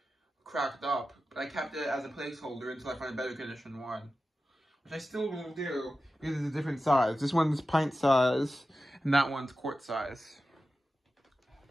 up. But I kept it as a placeholder until I find a better condition one. Which I still will do, because it's a different size. This one's pint size, and that one's quart size.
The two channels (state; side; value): normal; both; correlation 0.93